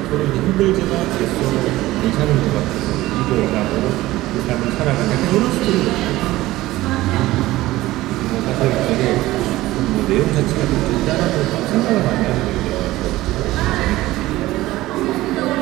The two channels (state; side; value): quieter; left; 17.2 dB